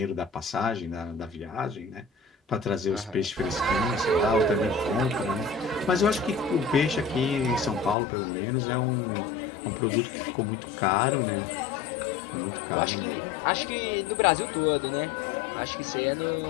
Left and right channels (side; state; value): right; drops out; at 8.0 s